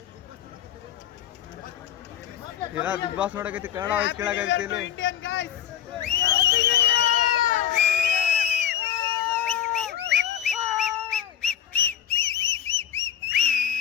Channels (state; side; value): quieter; right; 9.7 dB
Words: ಬಿಗ್ ಬಾಸ್ ನೋಡಕೈತಿ, ಕನ್ನಡ ವಾಯ್ಸ್ ಕೇಳಕೈತಿ ಇಲ್ಲಿ.